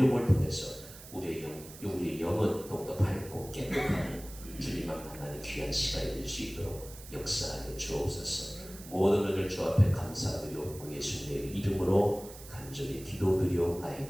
통해서 우리의 영은 더욱더 밝고 깨끗하고 주님만 만나는 귀한 시간이 될 수 있도록 역사하여 주옵소서. 모든 은혜를 주 앞에 감사드리옵고 예수님의 이름으로 간절히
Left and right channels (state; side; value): noise; right; hiss, 16 dB below the sound